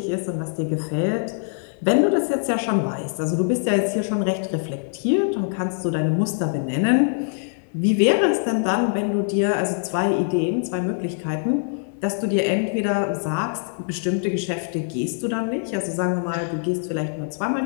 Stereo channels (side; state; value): right; silent; digital silence